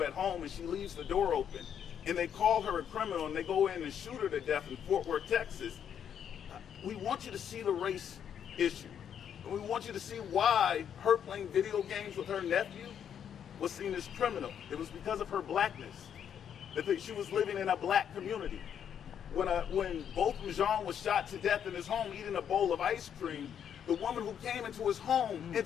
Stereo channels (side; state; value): right; quieter; 8.6 dB